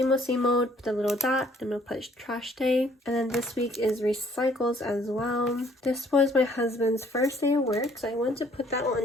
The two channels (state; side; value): normal; both; correlation 0.61